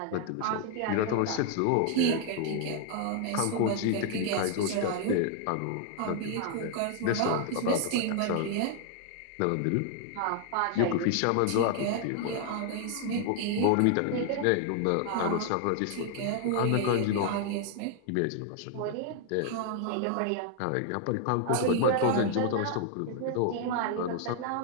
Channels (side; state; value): both; different; correlation 0.00